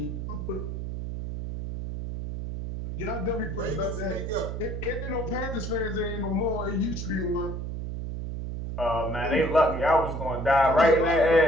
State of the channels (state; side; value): noise; right; hum, 5 dB below the sound